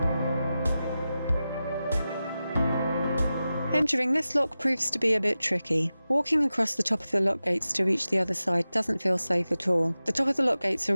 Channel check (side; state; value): both; inverted; correlation -0.94